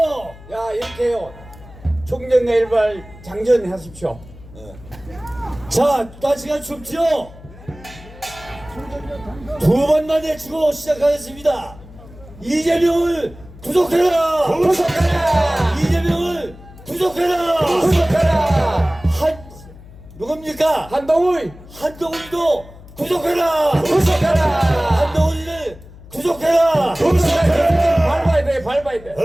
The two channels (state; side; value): noise; left; hum, 19 dB below the sound